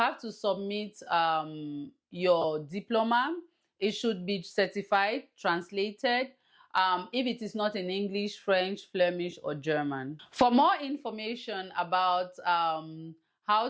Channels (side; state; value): both; identical; correlation 1.00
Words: to submit your diploma. It should be certified, translated, if it is not in English, French, Flemish, or German. For more information about how